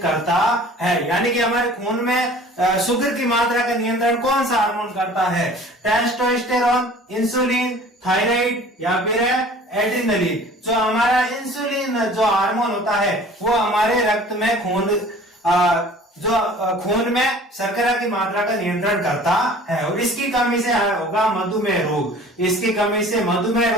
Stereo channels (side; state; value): both; normal; correlation 0.47